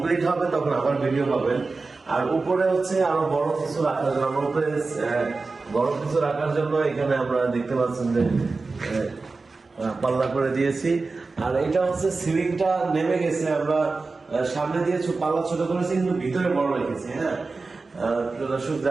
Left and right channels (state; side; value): quieter; left; 3.9 dB